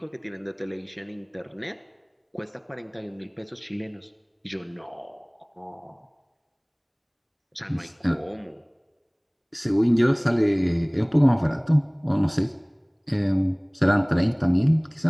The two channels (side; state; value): both; identical; correlation 1.00